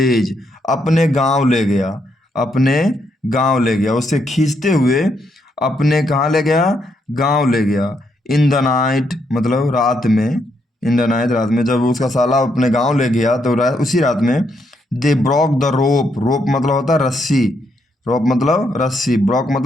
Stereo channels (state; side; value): normal; both; correlation 0.77